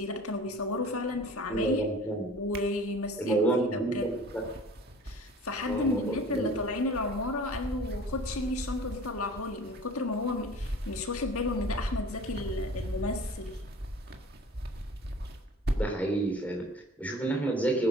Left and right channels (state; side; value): normal; both; correlation 0.44